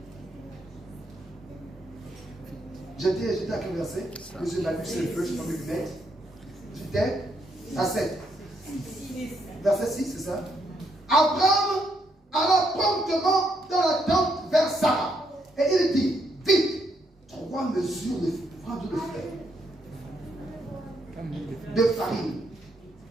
J'étais à quel verset? Monsieur m'a vu, c'est le feu, je prends mes lunettes. J'étais à 7. Verset 6, c'est ça? Abraham alla promptement dans la tente vers Sarah. Et il dit, vite, 3 mesures de de farine,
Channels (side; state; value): both; normal; correlation 0.76